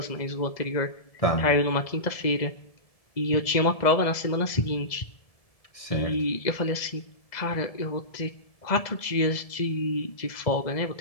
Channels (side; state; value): right; late; 1.7 ms